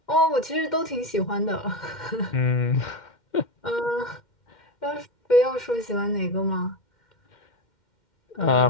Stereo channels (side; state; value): right; late; 2.1 ms